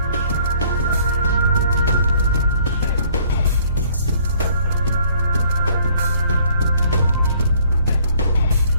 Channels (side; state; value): both; inverted; correlation -0.60